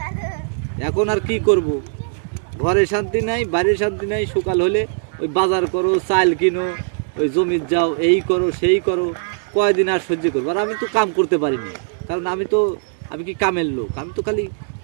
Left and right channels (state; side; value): silent; left; digital silence